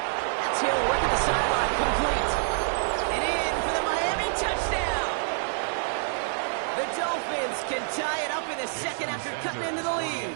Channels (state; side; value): silent; left; digital silence